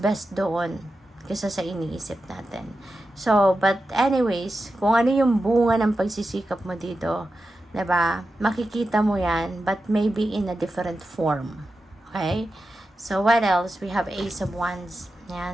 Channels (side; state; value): both; normal; correlation 0.91